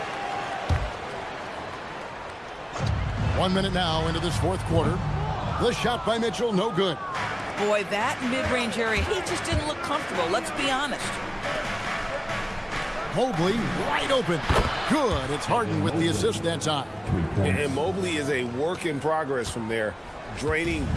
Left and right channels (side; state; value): both; identical; correlation 1.00